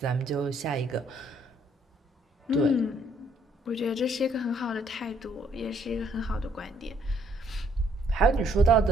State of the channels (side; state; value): both; normal; correlation 0.67